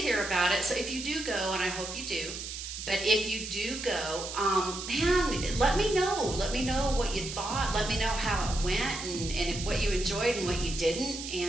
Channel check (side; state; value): right; noise; hiss, 8 dB below the sound